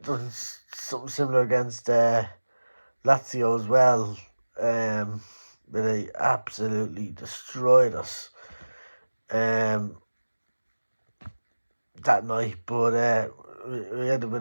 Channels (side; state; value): both; inverted; correlation -1.00